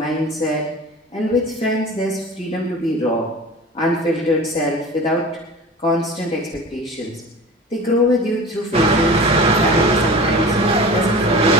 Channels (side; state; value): both; normal; correlation 0.36